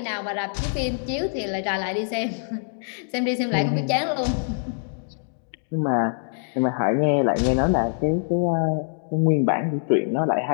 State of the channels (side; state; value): right; silent; digital silence